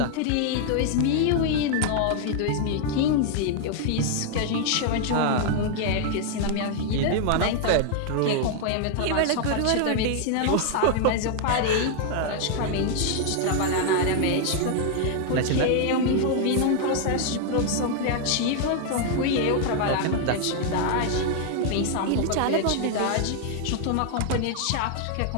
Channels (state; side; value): different; both; correlation 0.00